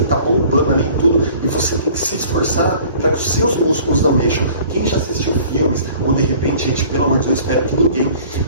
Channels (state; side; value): inverted; both; correlation -0.49